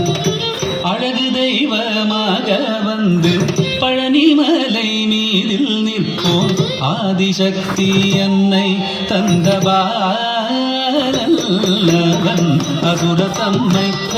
அழகு தெய்வமாக வந்து பழனிமலை மீதில் நிற்போம். ஆதிசக்தி என்னை தந்தவாரன் அசுரர் தம்மை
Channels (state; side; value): identical; both; correlation 1.00